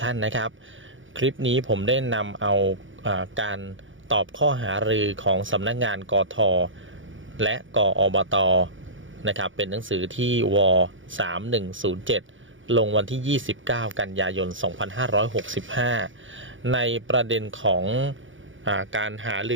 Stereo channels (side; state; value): left; late; 0.56 ms